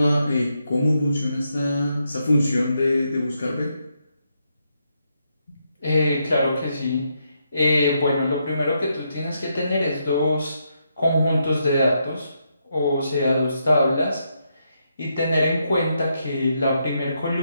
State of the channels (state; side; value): inverted; both; correlation -0.80